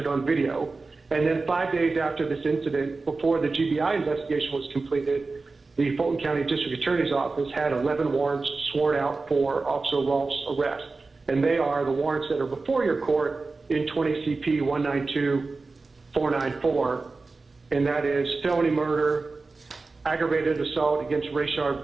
on video. And then 5 days after this incident, before the GBI investigation was completed, the Fulton County District Attorney's Office had 11 warrants sworn out for Officer Rolfe's arrest. And they are the warrants that are before your court in 20 CP 192494, and that is felony murder, aggravated assault against Rayshard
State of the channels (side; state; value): left; quieter; 3.8 dB